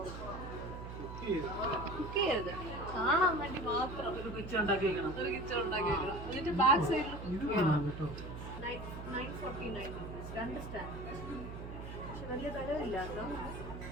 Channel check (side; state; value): right; noise; hum, 9 dB below the sound